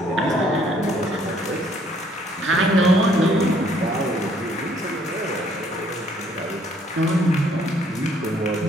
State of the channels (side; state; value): both; normal; correlation 0.64